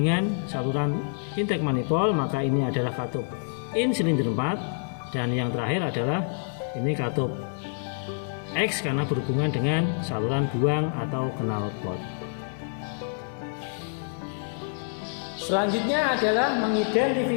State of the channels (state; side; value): silent; right; 60 dB below the other